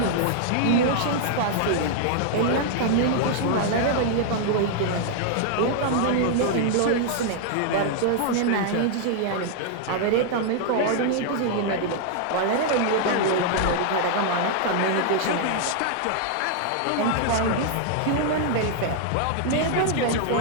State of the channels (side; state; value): both; different; correlation 0.00